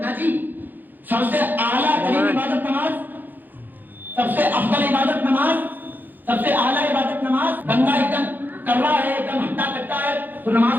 جی. سب سے اعلیٰ ترین عبادت نماز, سب سے افضل عبادت نماز, سب سے اعلیٰ عبادت نماز. بندہ ایک دم کر رہا ہے, ایک دم ہٹا کٹا ہے تو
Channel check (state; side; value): late; left; 0.087 ms